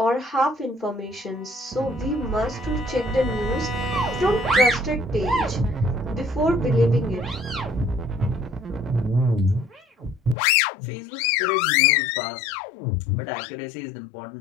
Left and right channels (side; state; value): right; drops out; at 10.4 s